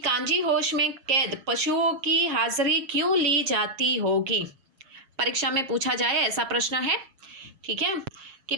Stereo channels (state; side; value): late; left; 7.3 ms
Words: होश में कैद पशुओं की हाजिरी क्यों ली जाती होगी। परीक्षा में पूछा जाए ऐसा प्रश्न है, ठीक है, कि